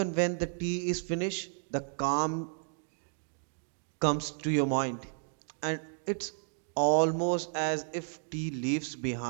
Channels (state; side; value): silent; left; digital silence